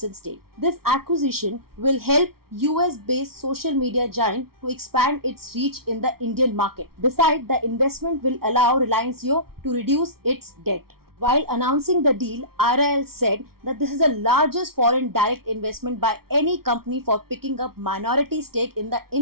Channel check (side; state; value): left; late; 0.94 ms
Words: stake. This acquisition will help US-based social media giant to expand its reach in the Indian market. Besides, the investment will allow Reliance Jio to reduce its debt. While announcing the deal, RIL said that this is the largest foreign direct investment by any company for picking up minority stake in the